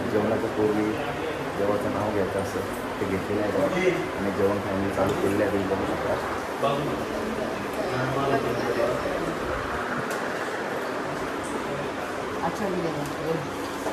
जेवणाच्या पूर्वी देवाचं नाव घ्यायचं असं ते घेतलेलं आहे आणि जेवण फॅमिली चालू केलेलं आहे. बघू शकता.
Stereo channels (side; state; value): both; identical; correlation 1.00